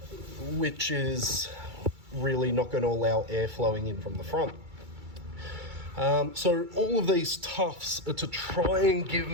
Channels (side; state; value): left; late; 2.3 ms